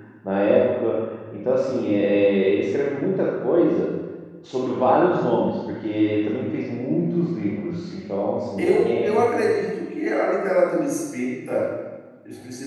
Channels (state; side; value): identical; both; correlation 1.00